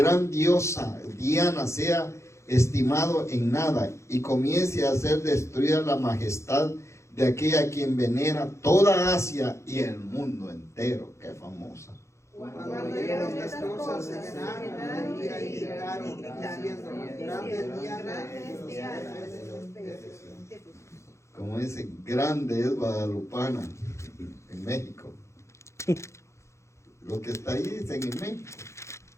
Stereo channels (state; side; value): late; right; 0.14 ms